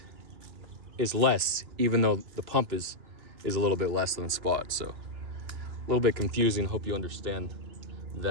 is less, even though the pump is a little bit less than spot. So a little bit confusing. Hope you understand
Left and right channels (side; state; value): left; late; 2.9 ms